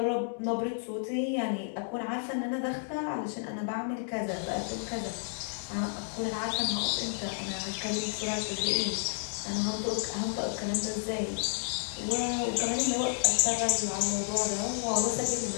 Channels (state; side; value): silent; right; 57 dB below the other